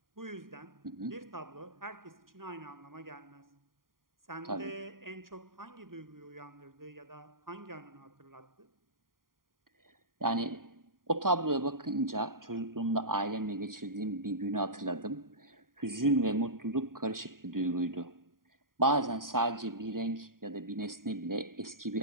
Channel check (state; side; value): late; left; 0.91 ms